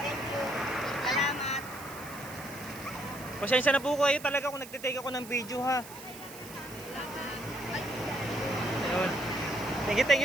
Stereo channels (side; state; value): right; noise; hiss, 16 dB below the sound